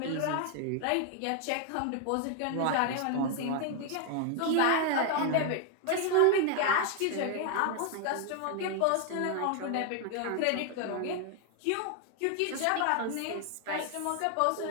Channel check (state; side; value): different; both; correlation 0.00